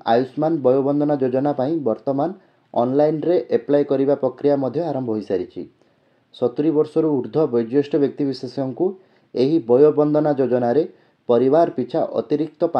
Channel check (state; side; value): identical; both; correlation 1.00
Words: आयुष्मान वयोवंदना योजना पाई वर्तमान ऑनलाइन रे एप्लाई करिबा प्रक्रिया मध्य आरंभ हो सारी 70 वर्षर ऊर्ध्व वयोज्येष्ठ व्यक्तिविशेषों को यही वयोवंदना योजना रे परिवार पिछा अतिरिक्त